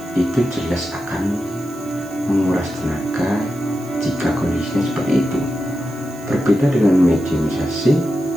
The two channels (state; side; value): noise; right; hiss, 22 dB below the sound